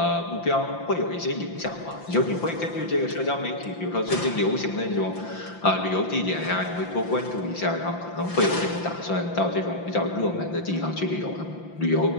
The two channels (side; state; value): right; late; 5.8 ms